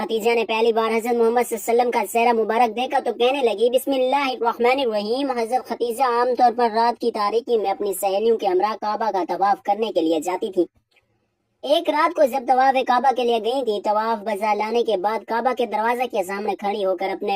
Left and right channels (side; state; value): both; identical; correlation 1.00